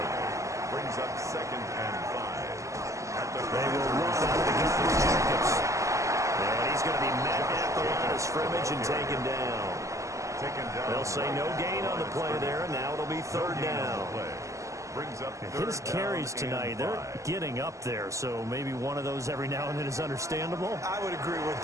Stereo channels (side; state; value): left; late; 0.15 ms